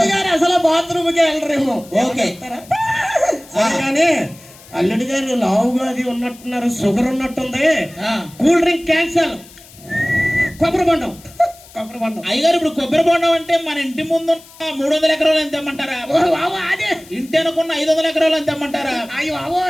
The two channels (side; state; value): left; noise; hiss, 22 dB below the sound